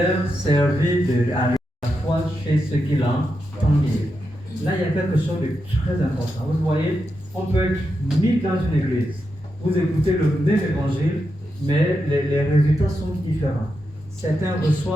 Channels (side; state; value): both; normal; correlation 0.86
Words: servit à chez ceux qui l'entendent. Là, il y a quelque chose de très important. Vous voyez, on peut être mis dans une église. Vous écoutez le même évangile, mais les résultats sont différents. Certains